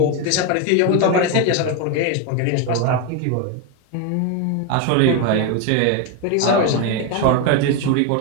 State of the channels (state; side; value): different; both; correlation 0.02